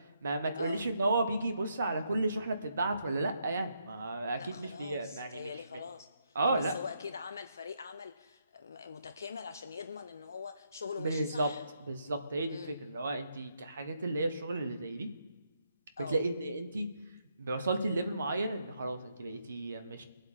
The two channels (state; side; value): inverted; both; correlation -0.77